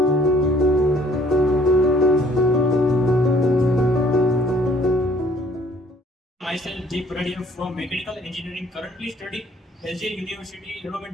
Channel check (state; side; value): normal; both; correlation 0.59